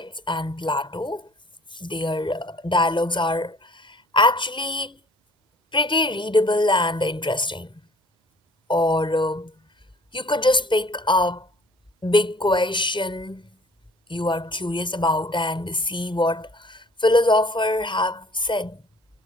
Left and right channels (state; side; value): normal; both; correlation 0.53